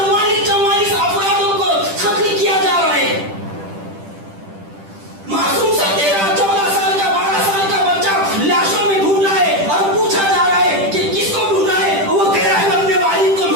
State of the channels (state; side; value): late; left; 10 ms